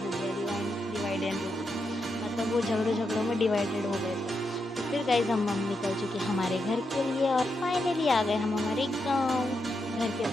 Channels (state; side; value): normal; both; correlation 0.84